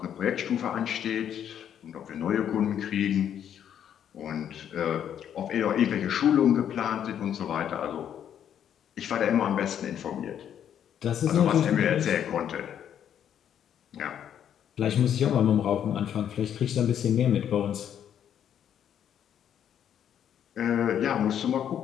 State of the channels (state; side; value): quieter; right; 9.4 dB